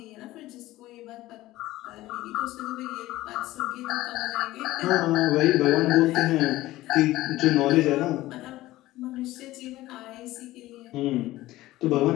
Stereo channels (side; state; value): right; quieter; 16.8 dB